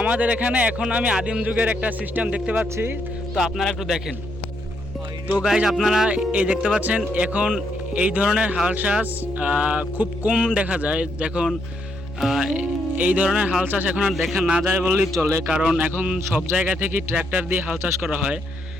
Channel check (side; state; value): both; normal; correlation 0.76